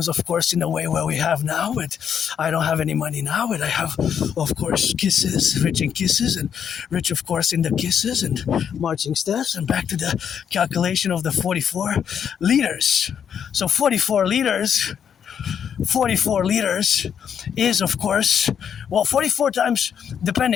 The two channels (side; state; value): right; quieter; 8.1 dB